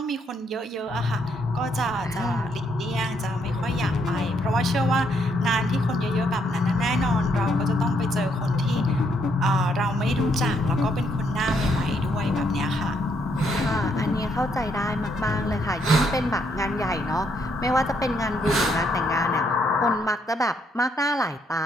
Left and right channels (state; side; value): normal; both; correlation 0.73